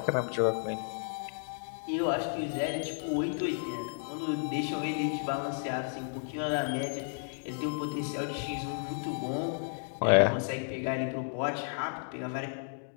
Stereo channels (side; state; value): right; silent; digital silence